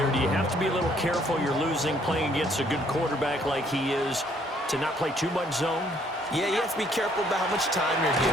Do you have to be a little careful? You're losing, playing against a good quarterback like he is, to not play too much zone? Yeah, you have to be careful about how much time you're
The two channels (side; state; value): both; normal; correlation 0.65